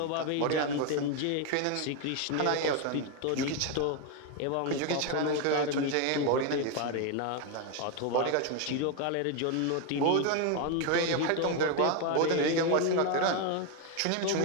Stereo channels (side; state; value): both; different; correlation 0.02